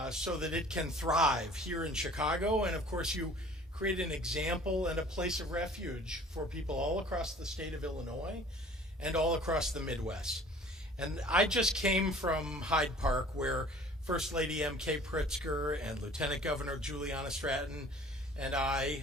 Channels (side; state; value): both; normal; correlation 0.49